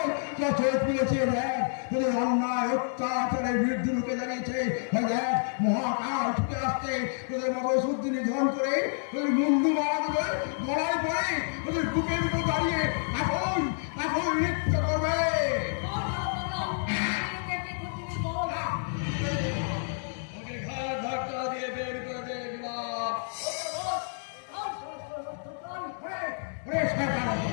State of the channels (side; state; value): right; silent; digital silence